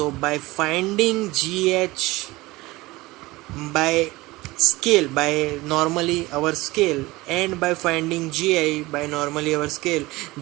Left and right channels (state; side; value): quieter; left; 20.4 dB